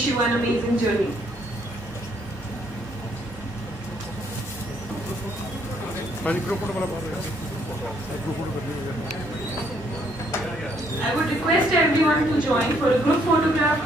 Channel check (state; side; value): normal; both; correlation 0.68